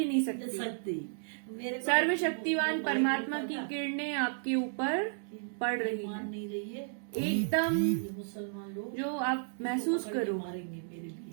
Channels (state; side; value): silent; left; digital silence